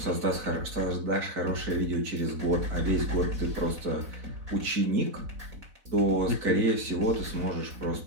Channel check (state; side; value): late; left; 4.0 ms